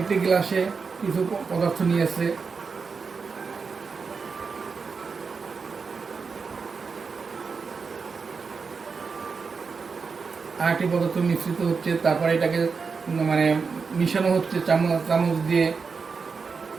গ্লাসে কিছু পদার্থ নিয়েছে, আর একটি পদার্থ মিশ্রিত হচ্ছে, তারপরে এটাকে মানে মিশানো হচ্ছে চামচ দিয়ে।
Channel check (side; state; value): left; quieter; 5.1 dB